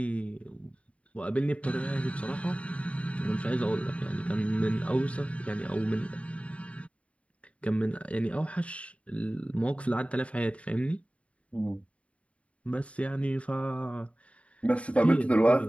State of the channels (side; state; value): right; late; 0.064 ms